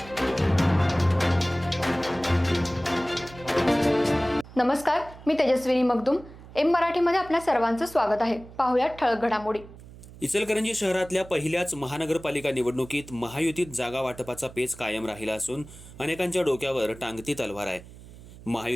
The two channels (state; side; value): noise; right; hum, 18 dB below the sound